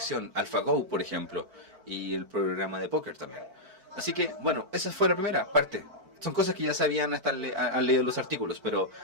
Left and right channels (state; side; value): late; left; 4.5 ms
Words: AlphaGo, por ejemplo, y el programa de póker también. Así que, bueno, esa fue la primera parte. Son cosas que ya sabían, han leído los artículos, pero